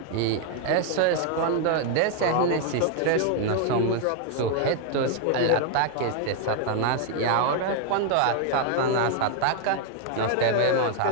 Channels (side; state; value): both; different; correlation 0.00